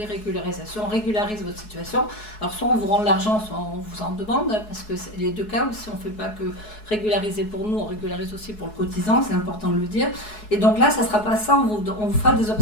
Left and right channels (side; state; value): right; late; 4.7 ms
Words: régularisation. On régularise votre situation. Alors soit on vous rend l'argent, soit on vous en demande, parce que c'est les deux cas aussi, on fait pas que régulariser pour nous, on régularise aussi pour le cotisant, c'est important de le dire. Et donc là, ça sera pas ça, on vous fera des